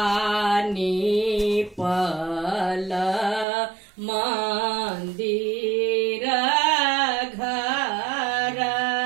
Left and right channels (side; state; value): left; drops out; at 3.5 s